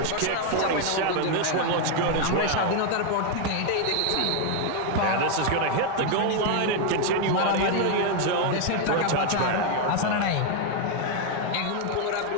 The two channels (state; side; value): different; both; correlation 0.01